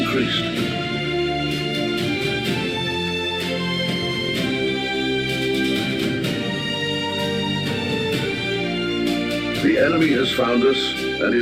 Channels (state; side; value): identical; both; correlation 1.00